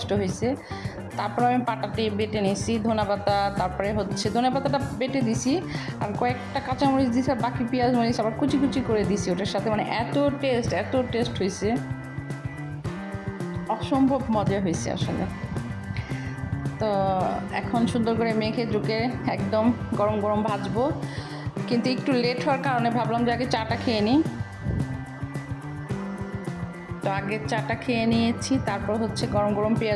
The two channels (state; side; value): identical; both; correlation 1.00